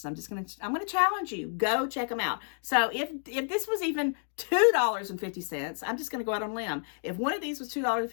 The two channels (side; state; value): right; silent; digital silence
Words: I'm going to challenge you. Go check them out. So if this was even $2.50, I'm just going to go out on a limb. If one of these was